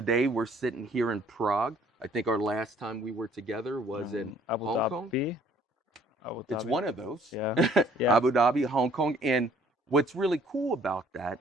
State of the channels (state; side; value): normal; both; correlation 0.59